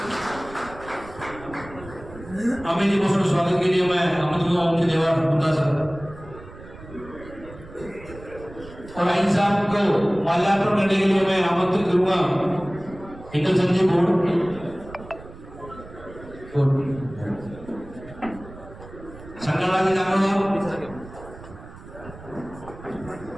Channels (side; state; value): right; noise; rumble, 17 dB below the sound